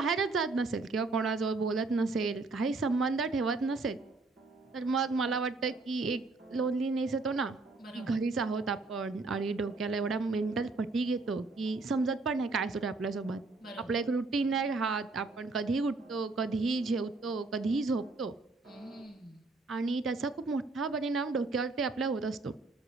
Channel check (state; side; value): quieter; left; 3.6 dB